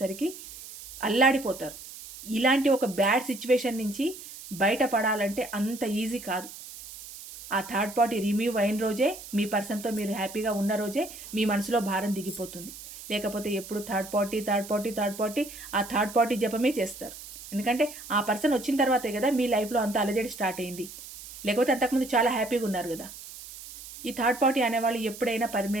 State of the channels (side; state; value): right; noise; hiss, 14 dB below the sound